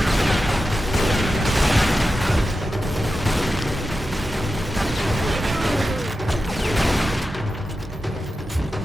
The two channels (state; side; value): normal; both; correlation 0.92